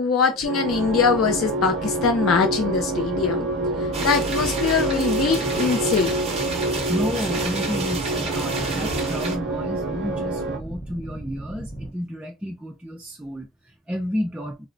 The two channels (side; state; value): both; normal; correlation 0.31